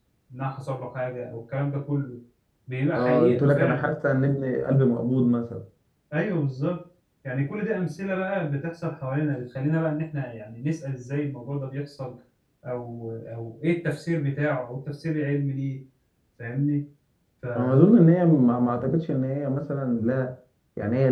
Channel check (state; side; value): identical; both; correlation 1.00